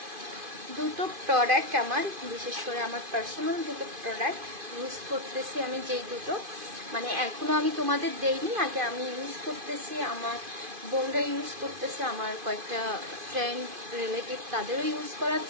দুটো প্রোডাক্ট, আমার বিশেষ করে আমার পার্সোনাল দুটো প্রোডাক্ট ইউজ করতেছি আমি, যেই দুটো মানে এখনো আমি তোমাদের দেইনি, আগে আমি ইউজ করতেছি, আমার বোনরা ইউজ করতেছে, আমার কয়েকটা ফ্রেন্ড রিলেটিভ তাদেরও ইউজ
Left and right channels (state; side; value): late; left; 2.5 ms